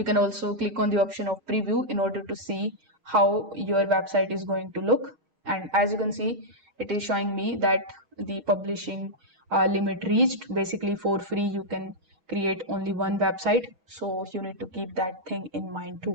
can also click on the option of preview in order to see how your website is going to look. And as you can see, it is showing me that the publishing limit reached. Basically, for free, you can create only one website. So you need to keep that thing in mind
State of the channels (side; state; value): left; late; 6.3 ms